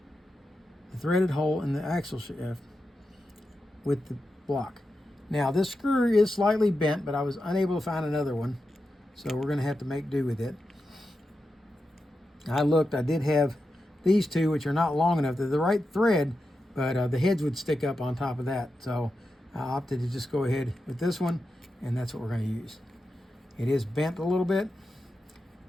the threaded hole in the axle shaft with the block. Now this screw is slightly bent, but I was unable to find another one, so we're going to have to make do with it. I looked, I did have these 2, which are not long enough. They're the right thread, but the heads would stick up on top of that. So I opted to just go ahead with this one, and that's what we're going to use. It is bent a little bit,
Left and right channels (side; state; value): both; normal; correlation 0.89